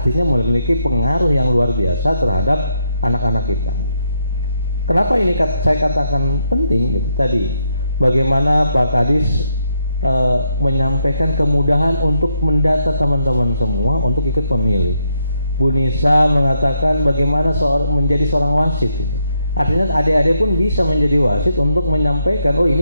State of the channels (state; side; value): inverted; both; correlation -0.78